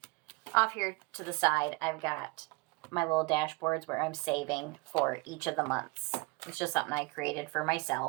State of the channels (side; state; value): left; quieter; 25.5 dB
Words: off here to the side, I've got my little dashboards where I'm saving for each of the months. It's just something I created for